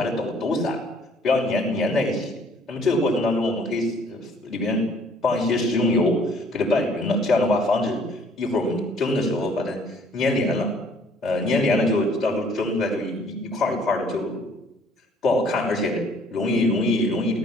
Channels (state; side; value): normal; both; correlation 0.59